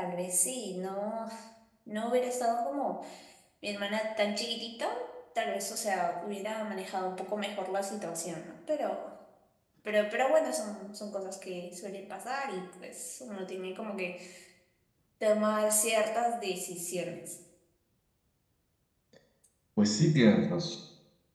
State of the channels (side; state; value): both; identical; correlation 1.00